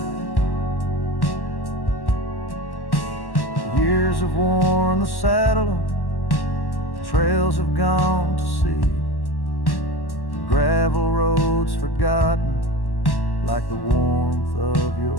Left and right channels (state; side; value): late; right; 1.1 ms